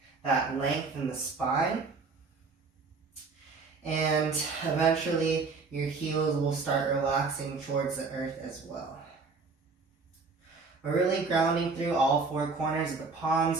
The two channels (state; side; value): quieter; left; 4.4 dB